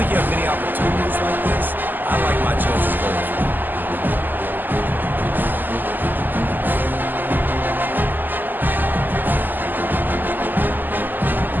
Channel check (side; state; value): left; late; 0.088 ms